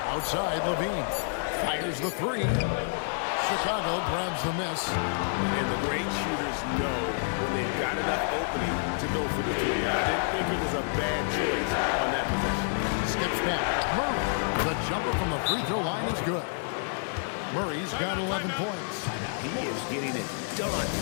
Outside, Levine. Fires the 3. Chicago grabs the miss. And the great shooters know when they've got enough opening to go for the 3. I didn't think it was a bad choice on that possession. Skips back. Murray. The jumper from the free throw line is good. Murray's got 11 points. He is getting it done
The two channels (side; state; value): right; silent; digital silence